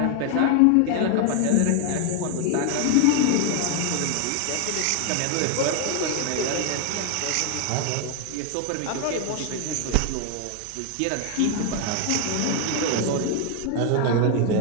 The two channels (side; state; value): both; different; correlation 0.01